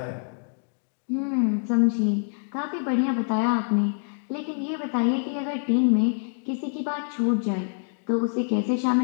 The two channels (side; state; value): right; silent; 61 dB below the other